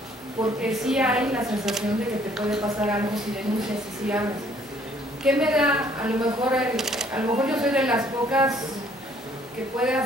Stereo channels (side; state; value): both; normal; correlation 0.62